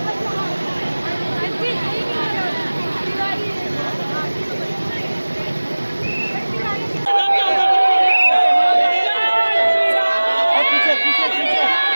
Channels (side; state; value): both; inverted; correlation -1.00